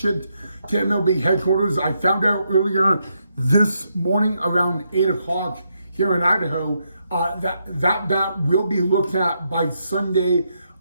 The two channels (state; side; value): inverted; both; correlation -0.80